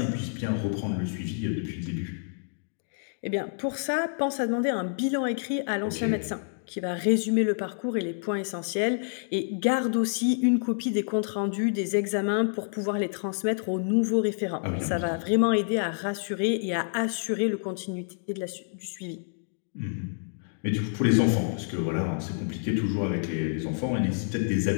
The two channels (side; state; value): right; silent; digital silence